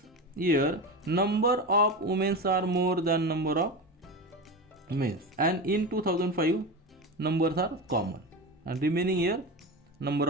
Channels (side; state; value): both; normal; correlation 0.23